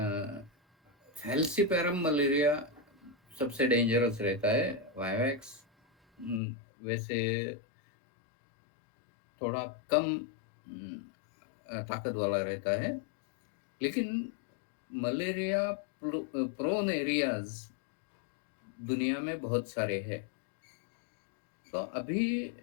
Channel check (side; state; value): right; drops out; at 6.4 s